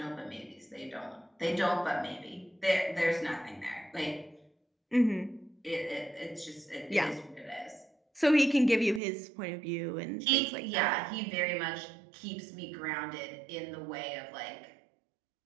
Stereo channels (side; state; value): left; drops out; at 9.0 s